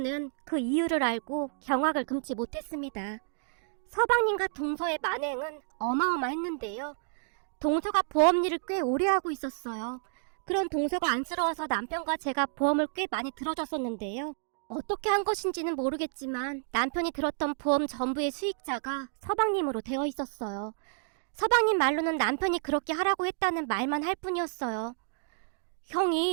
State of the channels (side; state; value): left; silent; digital silence